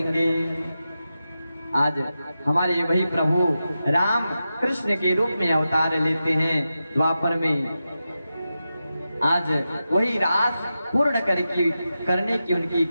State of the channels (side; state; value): both; inverted; correlation -0.91